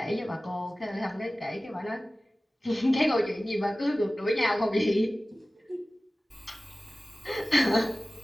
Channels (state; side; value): normal; both; correlation 0.97